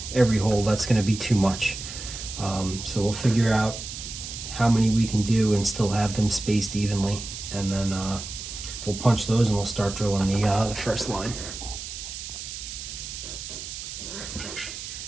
hole, that's going to be too much. So we'll figure out how many we can do and still have them spaced evenly, and then we'll punch those and we'll start drilling the first line.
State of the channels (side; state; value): right; noise; hiss, 9 dB below the sound